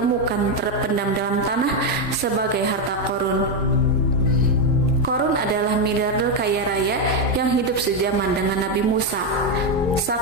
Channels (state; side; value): normal; both; correlation 0.05